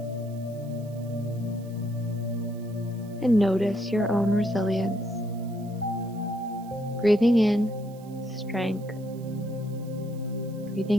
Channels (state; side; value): noise; right; hiss, 26 dB below the sound